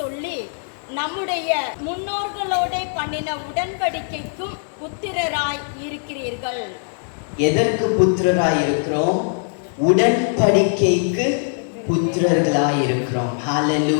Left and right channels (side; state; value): right; silent; digital silence